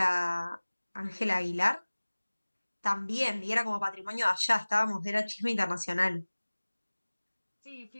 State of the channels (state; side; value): inverted; both; correlation -1.00